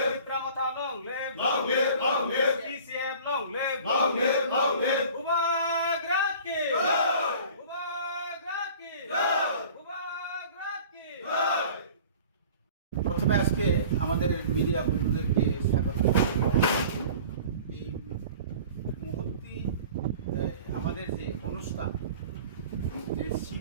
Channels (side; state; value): both; inverted; correlation -0.44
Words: long live, PCF long live, উবাগ্রা কি, উবাগ্রা কি, উবাগ্রা কি। প্রথমে আজকে আমাদের মিডিয়া বন্ধুদেরকে স্বাগত। এই মুহূর্তে আমাদের যে অনুষ্ঠান, যে